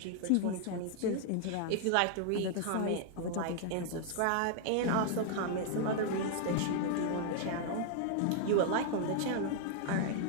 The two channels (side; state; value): both; different; correlation 0.00